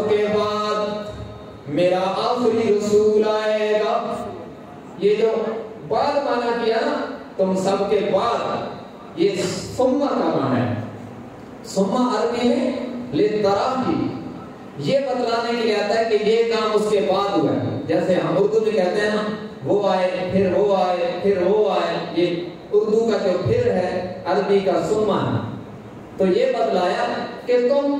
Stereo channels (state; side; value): identical; both; correlation 1.00